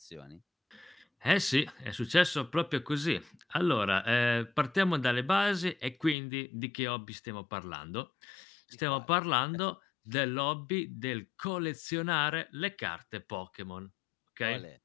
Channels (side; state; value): right; drops out; at 6.2 s